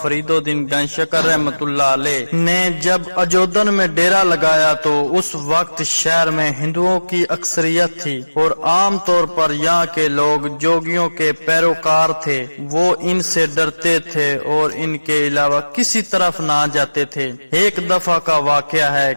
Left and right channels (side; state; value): both; inverted; correlation -1.00